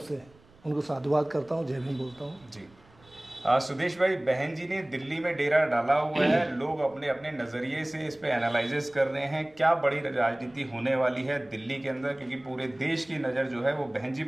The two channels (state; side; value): noise; right; rumble, 28 dB below the sound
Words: से उनको साधुवाद करता हूँ, जय भीम बोलता हूँ। जी सुदेश भाई, बहन जी ने दिल्ली में डेरा डाला हुआ है, लोग अपने अपने नज़रिए से इस पे एनालिसिस कर रहे हैं। क्या बड़ी राजनीति होने वाली है दिल्ली के अंदर, क्योंकि पूरे देश की नज़र जो है वो बहन जी